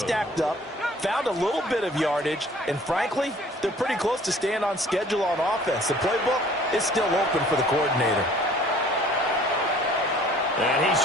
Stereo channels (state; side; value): normal; both; correlation 0.53